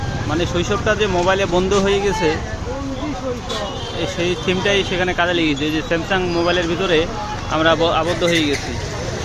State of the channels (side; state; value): both; identical; correlation 1.00